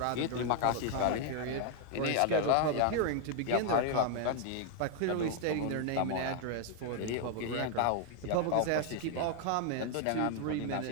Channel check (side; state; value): both; different; correlation 0.00